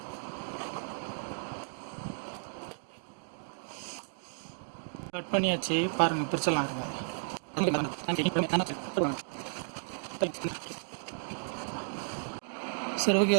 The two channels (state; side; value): silent; left; digital silence